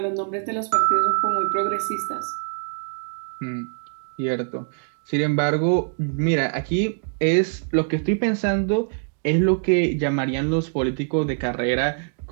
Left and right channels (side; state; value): left; silent; digital silence